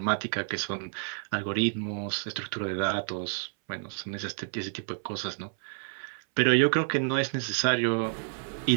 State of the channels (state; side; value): silent; left; 58 dB below the other